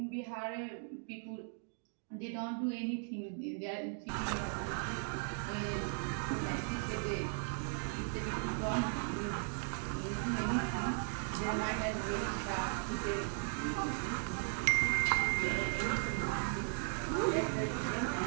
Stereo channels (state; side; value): silent; left; 53 dB below the other